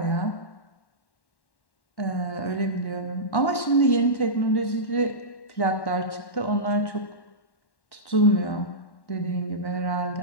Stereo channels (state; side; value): late; right; 1.1 ms